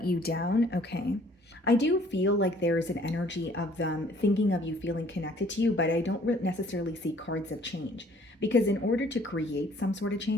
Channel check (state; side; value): normal; both; correlation 0.58